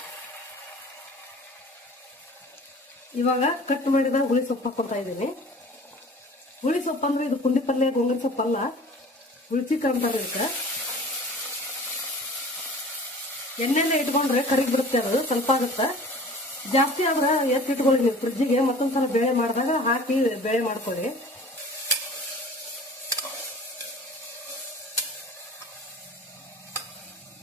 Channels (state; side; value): normal; both; correlation 0.44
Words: ಇವಾಗ ಕಟ್ ಮಾಡಿದ ಹುಳಿ ಸೊಪ್ಪು ಹಾಕೋತಾ ಇದ್ದೀನಿ. ಹುಳಿ ಸೊಪ್ಪು ಅಂದ್ರೆ ಇದು ಪುಂಡಿ ಪಲ್ಯ, ಗೋಂಗೂರ ಸೊಪ್ಪಲ್ಲ, ಹುಳ್ಚಿಕ್ಕ ಅಂತಾರೆ ಇದಕ್ಕೆ. ಎಣ್ಣೆಲ್ಲೇ ಇಟ್ಕೊಂಡ್ರೆ ಕರಿಗ್ ಬಿಡುತ್ತೆ, ಅದು ಸ್ವಲ್ಪ ಆಗುತ್ತೆ. ಜಾಸ್ತಿ ಆದ್ರೆ ಎತ್ತಿಟ್ಕೊಳ್ಳಿ ನೀವು ಫ್ರಿಜ್ಜಿಗೆ. ಮತ್ತೊಂದ್ಸಲ ಬೇಳೆ ಮಾಡಿದಾಗ ಹಾಕಿ ಬೇಳೆ ಮಾಡ್ಕೊಳ್ಳಿ.